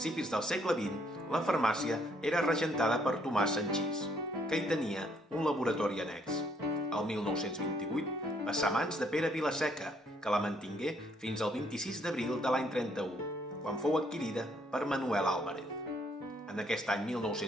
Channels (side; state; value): both; normal; correlation 0.68